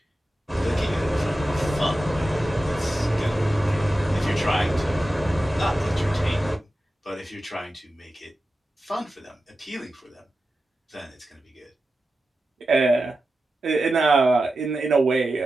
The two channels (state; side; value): normal; both; correlation 0.93